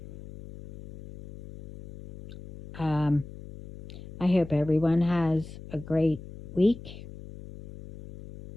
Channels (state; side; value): noise; left; hum, 15 dB below the sound